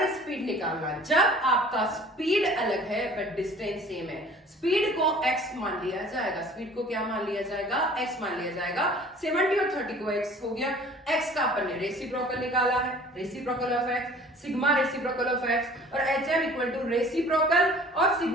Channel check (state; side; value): normal; both; correlation 0.49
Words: स्पीड निकालना, जब आपका स्पीड अलग है बट डिस्टेंस सेम है। स्पीड को x मान लिया जाएगा, स्पीड को क्या मान लिया जाएगा, x मान लिया जाएगा। 70 और 30 को x हो गया, x का अपन ने रेसिप्रोकल निकाला है, reciprocal of x, sigma reciprocal of x, और HM इक्वल टू रेसिप्रोकल और